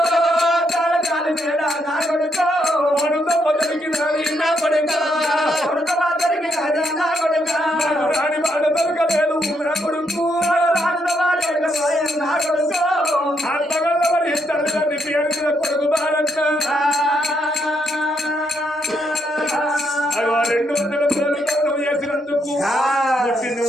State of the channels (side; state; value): both; normal; correlation 0.76